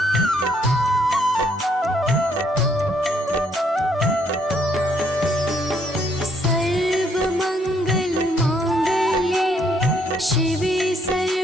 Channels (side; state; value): both; normal; correlation 0.69